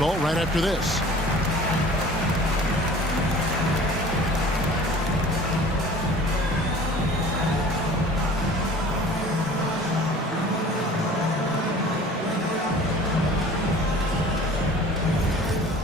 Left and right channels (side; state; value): both; normal; correlation 0.45